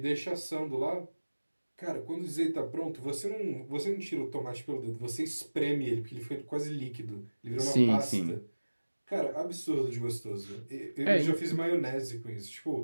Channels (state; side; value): inverted; both; correlation -1.00